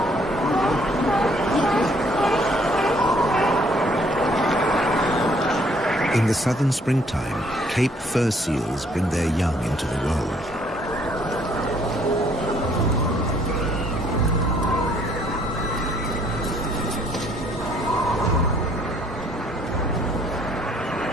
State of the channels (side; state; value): both; normal; correlation 0.64